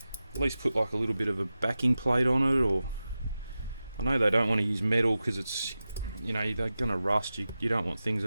at least put like a little bit of a backing plate on it, or I know they don't want to use metal because it's, you know, they're gonna rust. You don't want things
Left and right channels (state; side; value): inverted; both; correlation -0.93